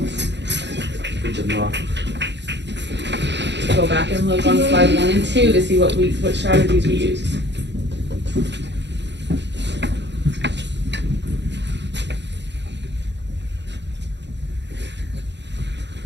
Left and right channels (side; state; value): left; late; 0.51 ms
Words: Good job. Go back and look on slide 1 and 2 to see what strategies we used.